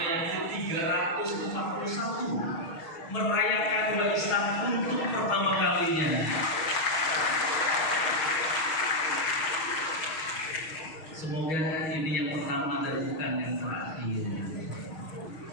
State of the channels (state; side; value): late; right; 6.4 ms